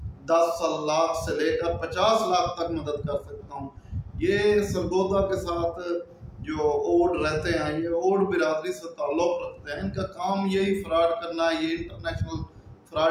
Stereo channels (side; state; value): both; identical; correlation 1.00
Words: 10 लाख से लेकर 50 लाख तक मदद कर सकता हूँ। ये सरगोदा के साथ जो ओड रहते हैं, ये ओड बिरादरी से ताल्लुक रखते हैं, इनका काम यही फ्रॉड करना है, ये इंटरनेशनल